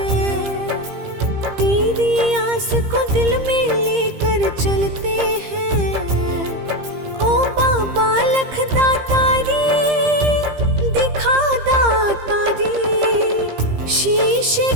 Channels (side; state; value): left; late; 15 ms